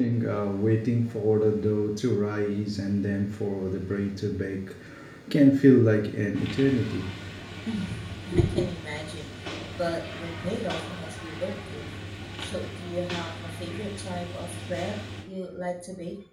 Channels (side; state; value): both; identical; correlation 1.00